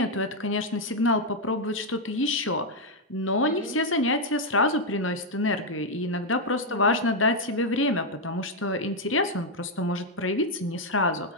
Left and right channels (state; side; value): normal; both; correlation 0.01